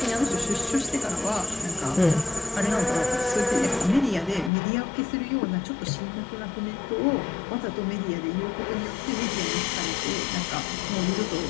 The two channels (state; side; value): drops out; right; at 4.5 s